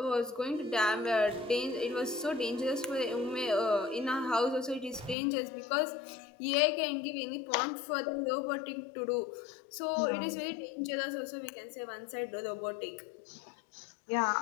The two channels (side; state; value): right; drops out; at 5.2 s